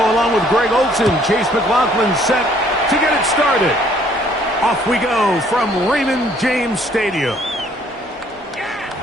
along with Greg Olson. Chase McLaughlin set to get it started. Off we go from Raymond James Stadium.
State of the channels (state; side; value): normal; both; correlation 0.62